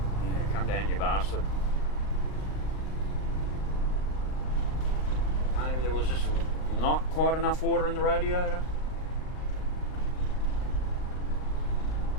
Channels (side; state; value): right; late; 39 ms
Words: Yeah, come down, you bastard. Maybe there was just not quite enough water in the radiator.